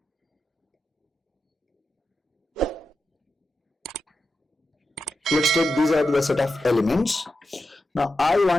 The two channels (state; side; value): normal; both; correlation 0.89